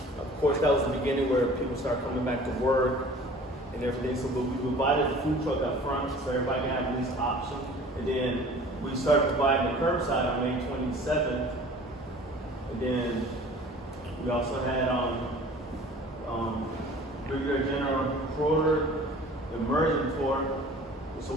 Of course, that was the beginning where people start coming back to work and everything. So we provided the food truck up front so everybody can have at least option. And then we started providing the curbside on May 27th. And then we also had Brigadier General Schroeder, the immersion tour. So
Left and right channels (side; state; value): both; normal; correlation 0.46